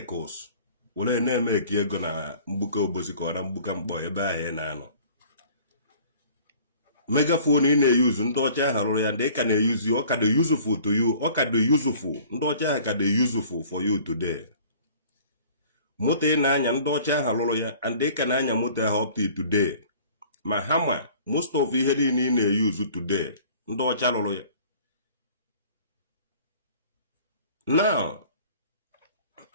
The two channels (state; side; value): inverted; both; correlation -0.50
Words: were na-eme eke ego na mgbuka obosi ka ọ na mgbuka mkpọ ebe ahụ ị na-anọ. Megaphone ị na-eyuzu ndị ọcha ahụ rụrụ ya ndị ka na-eyuzu ọ ka dị useful to you ọ ka dị useful ndị ọcha ahụ ka dị useful for you today. Moto ị na-anya ndị ọcha ahụ rụrụ ya and ị ka na-anya moto ahụ up to today ma ha ma most of ihe niile ị na-eyuzu today ndị ọcha rụrụ ya. Now